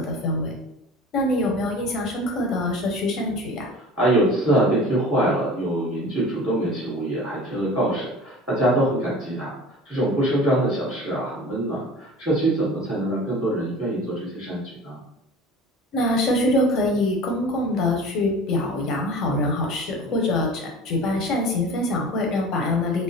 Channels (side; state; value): both; normal; correlation 0.40